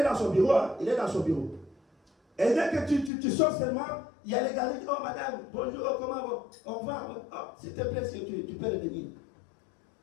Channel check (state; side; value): drops out; right; at 3.1 s